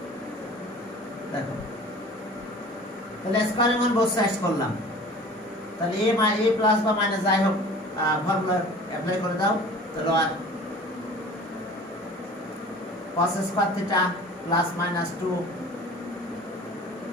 দেখো তাহলে স্কয়ারিং অন বোথ সাইডস করলাম তাহলে a প্লাস বা মাইনাস যাই হোক ফর্মুলা অ্যাপ্লাই করে দাও তাহলে আর cos square theta plus minus 2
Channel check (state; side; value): normal; both; correlation 0.44